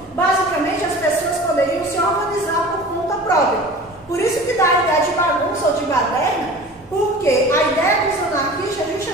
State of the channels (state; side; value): normal; both; correlation 0.39